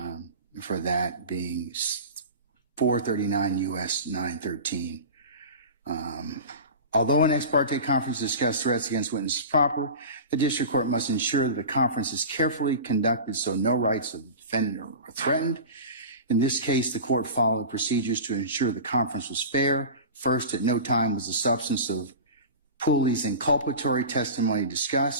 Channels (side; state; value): both; inverted; correlation -0.32